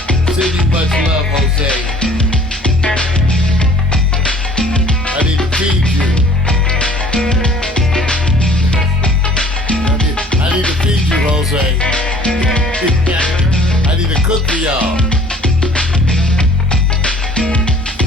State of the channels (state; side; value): normal; both; correlation 0.52